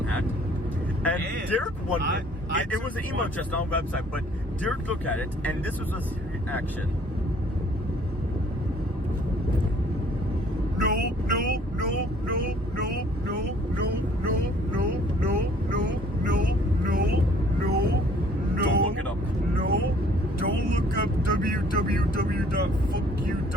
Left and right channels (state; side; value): normal; both; correlation 0.58